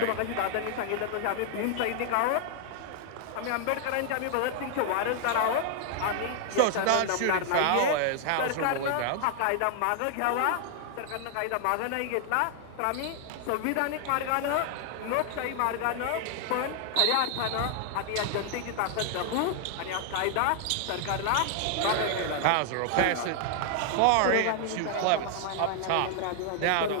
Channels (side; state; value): both; different; correlation 0.00